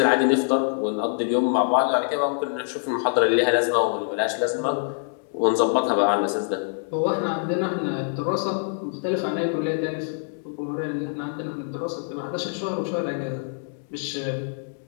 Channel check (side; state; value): right; silent; digital silence